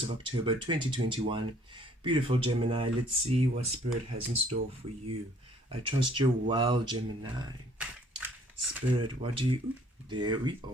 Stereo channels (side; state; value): both; normal; correlation 0.59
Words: of October 2021. Beautiful Gemini, let's see what Spirit has in store for you. I trust you're well, Gemini. Spirit, what do you... There we